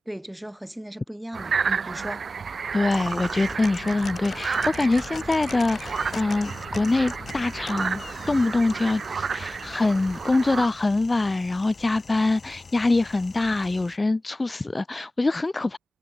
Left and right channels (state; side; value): normal; both; correlation 0.96